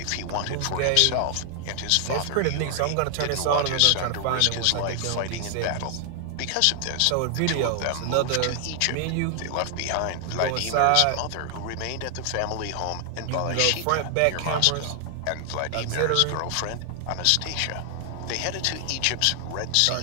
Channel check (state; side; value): different; both; correlation 0.00